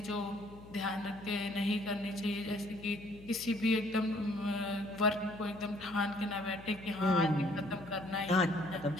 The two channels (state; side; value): noise; left; hum, 18 dB below the sound